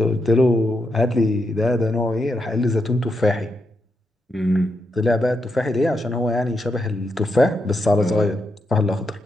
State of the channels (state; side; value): normal; both; correlation 0.83